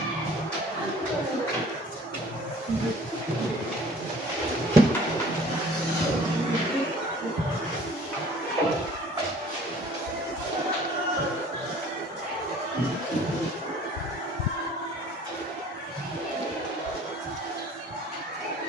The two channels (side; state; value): both; normal; correlation 0.51